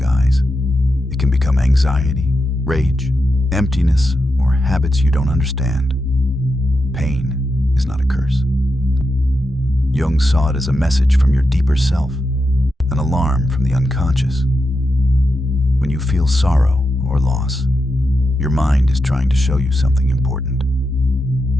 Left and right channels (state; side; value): normal; both; correlation 0.87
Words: It can become anxiety, rage, emptiness, or habits you don't understand. Pain is not a curse. Jung saw it as a message from your deeper self, an alarm from the unconscious. When you feel sorrow or loss, your mind is trying to show you something important.